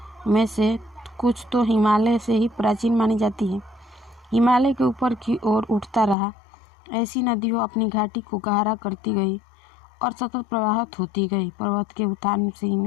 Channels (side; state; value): right; drops out; at 6.2 s